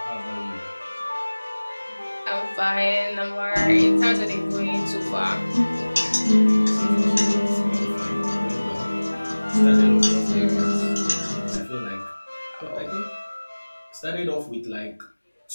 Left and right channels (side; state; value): both; inverted; correlation -1.00